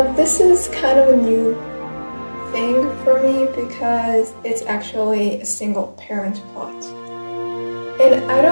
this is kind of a new thing for me because it's actually a single parent plot. And I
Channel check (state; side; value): inverted; both; correlation -1.00